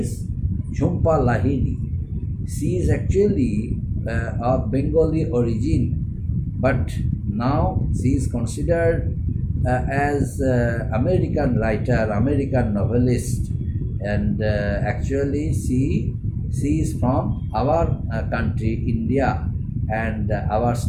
Jhumpa Lahiri. She is actually of Bengali origin, but now she is considered as American writer, American novelist, and actually she is from our country, India, and our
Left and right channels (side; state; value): both; identical; correlation 1.00